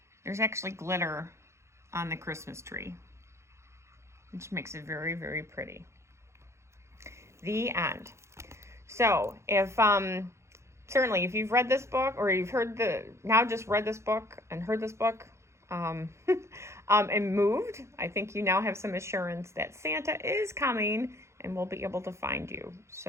there's actually glitter on the Christmas tree, which makes it very, very pretty. The end. So if certainly if you've read this book, or you've just read this book and heard this book and moved, I think you now have some assurance that Santa is coming and will be able to find you.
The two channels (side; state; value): left; late; 0.13 ms